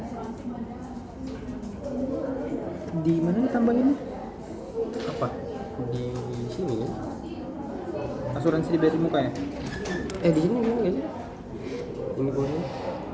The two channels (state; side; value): identical; both; correlation 1.00